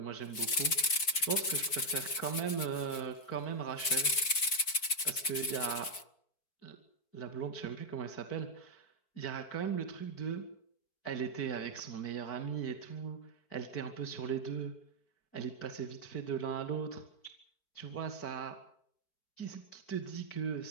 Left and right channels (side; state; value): right; late; 4.5 ms